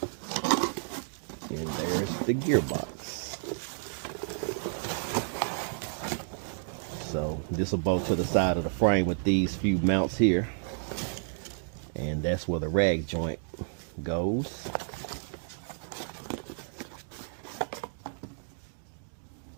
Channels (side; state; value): left; silent; digital silence